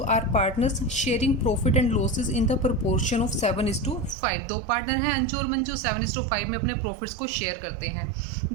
are partners sharing profit and losses in the proportion of 7:5. दो पार्टनर हैं अंजू और मंजू, 7:5 में अपने प्रॉफिट्स को शेयर करते हैं.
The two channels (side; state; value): left; drops out; at 4.2 s